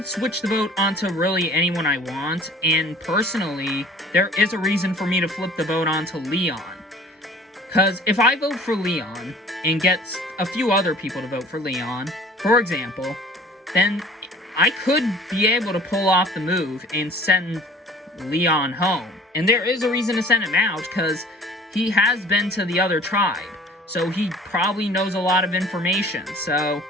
switch the vote onto really anyone I want, and personally, there is a reason for me to flip the vote onto Leon. Because if I vote for Leon, and get a few other people to vote for Leon, for example, then I could be able to pull off the move and send Leon home. And there is a reason to send him out, because he has been to the other tribe. So he probably knows a lot of information. So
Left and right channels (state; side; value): normal; both; correlation 0.48